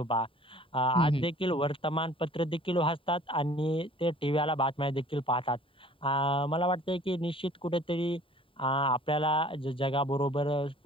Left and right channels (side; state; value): right; late; 0.25 ms